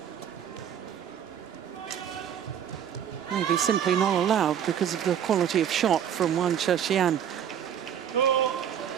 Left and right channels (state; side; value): quieter; left; 9.2 dB